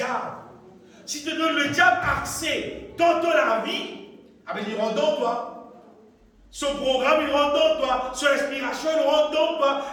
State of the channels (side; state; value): both; identical; correlation 1.00